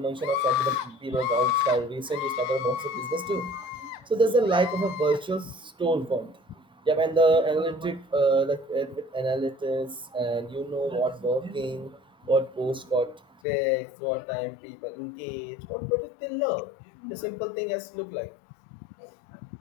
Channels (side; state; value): right; drops out; at 13.2 s